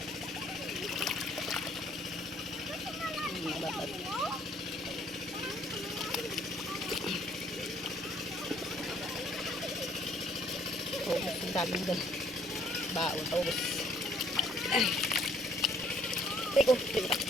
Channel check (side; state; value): both; normal; correlation 0.62